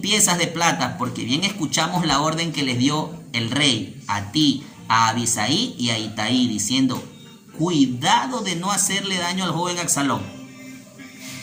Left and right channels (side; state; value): both; identical; correlation 1.00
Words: de plata, porque bien escuchamos la orden que les dio el rey a ti, a Abisai y a Itaí, diciendo: cuidado de no hacerle daño al joven Absalón.